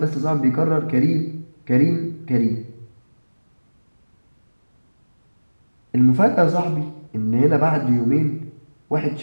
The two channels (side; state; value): both; inverted; correlation -1.00